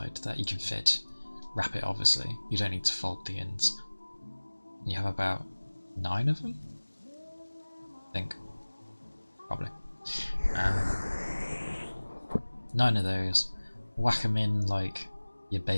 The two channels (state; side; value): inverted; both; correlation -1.00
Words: that you can fit. Wrap it, obviously. You don't need to fold the ends. You have about 9 of them? I think. Probably. 9 of those. Whack them in like you're